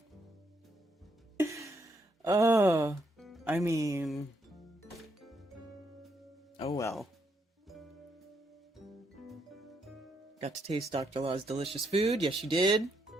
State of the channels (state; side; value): normal; both; correlation 0.75